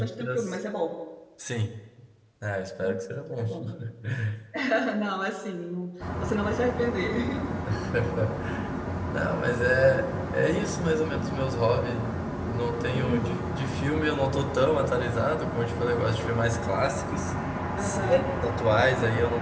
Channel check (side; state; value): both; identical; correlation 1.00